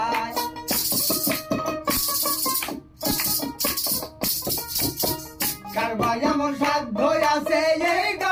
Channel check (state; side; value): identical; both; correlation 1.00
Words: কার বা এমন সাধ্য আছে এই